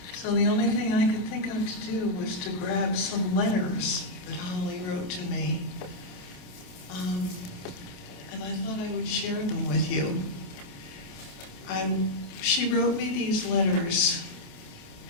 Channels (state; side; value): late; right; 27 ms